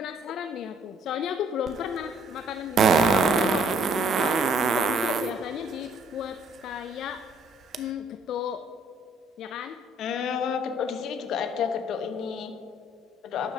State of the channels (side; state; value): both; normal; correlation 0.62